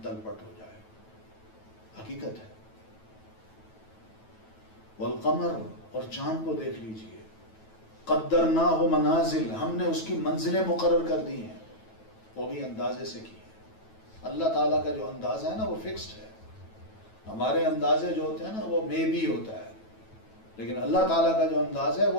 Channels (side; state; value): right; late; 9.2 ms